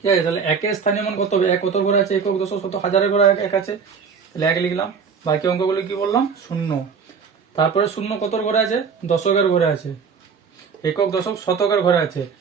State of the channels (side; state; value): left; quieter; 6.0 dB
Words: আছে। তাহলে 1-এর স্থানীয় মান কত হবে? 1 কত ঘরে আছে? একক, দশক, শতক, হাজারের ঘরে 1 আছে, তাহলে 1 লিখলাম। বাকি অঙ্কগুলো কি বললাম? 0। তারপরে 0 কত ঘরে আছে? দশকের ঘরে আছে। একক, দশক, শতকের ঘরে আছে,